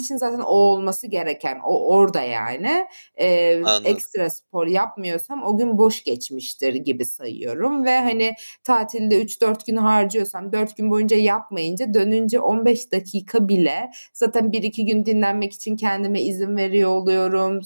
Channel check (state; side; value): inverted; both; correlation -1.00